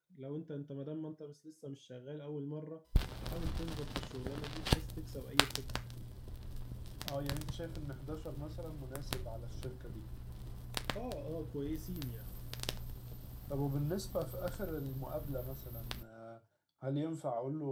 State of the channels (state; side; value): identical; both; correlation 1.00